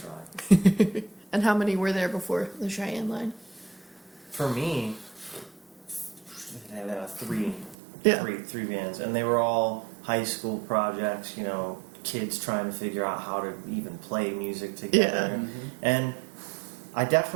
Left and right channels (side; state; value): left; drops out; at 7.8 s